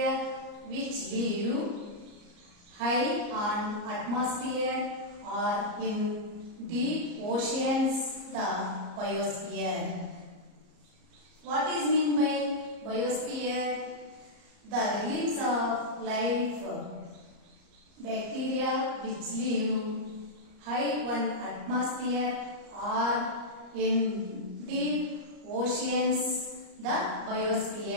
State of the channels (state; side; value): late; left; 34 ms